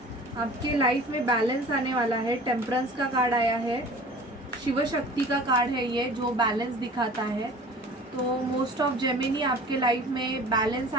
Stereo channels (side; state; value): both; normal; correlation 0.43